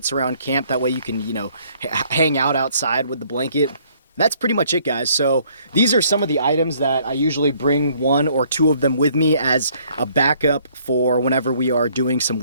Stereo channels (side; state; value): both; inverted; correlation -0.63